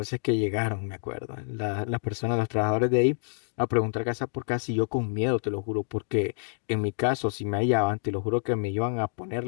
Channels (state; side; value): silent; right; digital silence